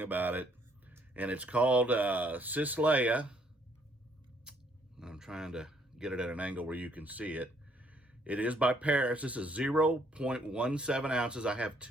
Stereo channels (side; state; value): both; normal; correlation 0.67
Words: about it. And it's called Sis Leia. I'm trying to get it at an angle where you can see it. It is by Paris. This is 0.17 ounces. I have